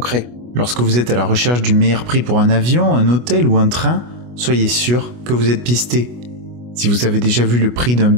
Lorsque vous êtes à la recherche du meilleur prix pour un avion, un hôtel ou un train, soyez sûr que vous êtes pisté. Si vous avez déjà vu le prix d'un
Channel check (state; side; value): late; left; 25 ms